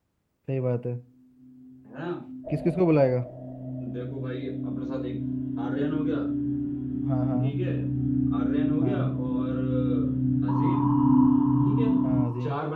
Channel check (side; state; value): both; identical; correlation 1.00